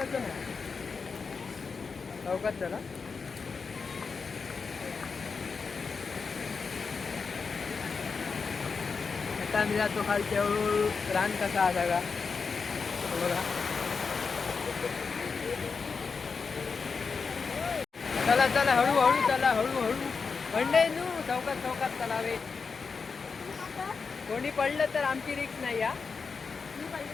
चौकात चला. आता आम्ही जातो खालच्या रान कसा आला का बघा. चला चला हळूहळू चला हळूहळू मंडई नू चौकात चौकात तलावे. कोणी पडलं तर आमची रिक्स नाही हा. मी पडले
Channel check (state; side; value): quieter; right; 5.1 dB